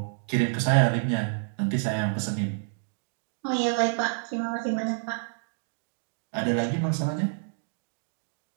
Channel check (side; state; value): left; silent; digital silence